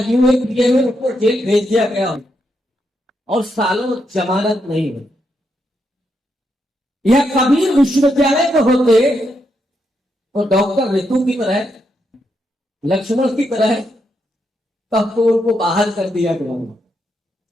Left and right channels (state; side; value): normal; both; correlation 0.81